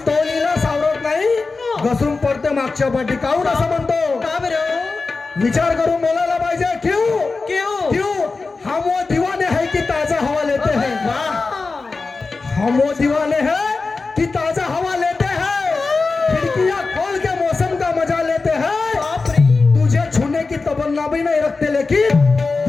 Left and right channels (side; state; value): right; quieter; 4.0 dB